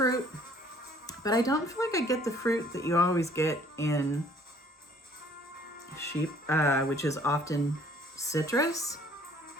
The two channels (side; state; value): both; normal; correlation 0.58